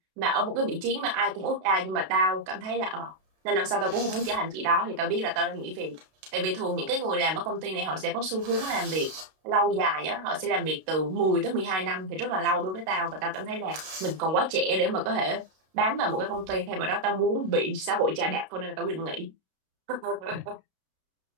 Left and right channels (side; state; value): left; late; 32 ms